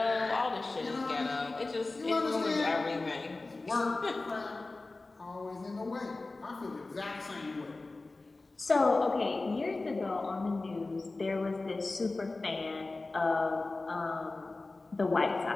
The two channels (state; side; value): quieter; right; 3.3 dB